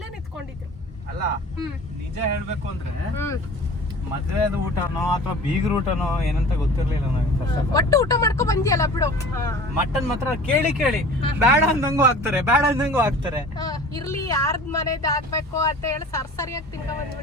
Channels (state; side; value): normal; both; correlation 0.42